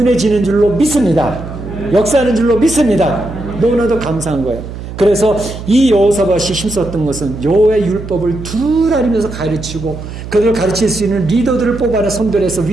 줄로 믿습니다. 역사하는 줄로 믿습니다. 너무나도 감사한 거예요. 그래서 이 여호사밧이 힘썼던 것은 여호와의 율법을 둘 알리면서 가르치고 그들을 가르칠 수 있는 리더들을 뽑아내 선별해서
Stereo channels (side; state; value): right; noise; hum, 10 dB below the sound